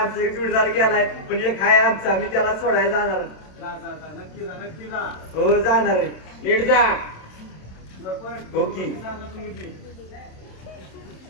एक जोडीदार गेलाय पण एक हाय आमचा मी त्याला सोडायला जाणार जा जा जा नक्की जा नक्की जा. हो जाणार आहे नीट जा सरपंच ओके. सांगा तुम्ही बी.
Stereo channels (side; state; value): right; late; 27 ms